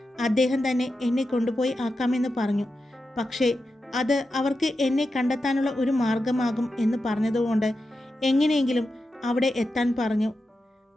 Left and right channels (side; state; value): both; normal; correlation 0.89